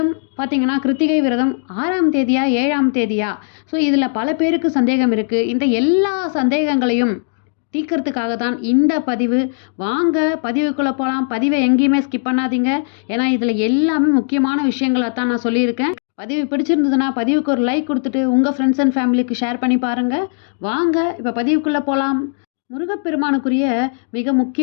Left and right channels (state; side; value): silent; right; digital silence